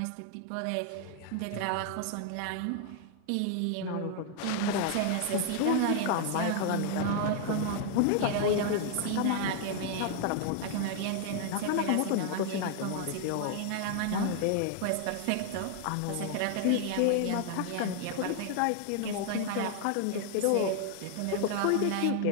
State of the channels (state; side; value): different; both; correlation 0.00